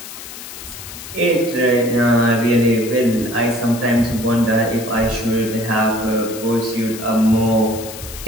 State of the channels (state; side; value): noise; left; hiss, 12 dB below the sound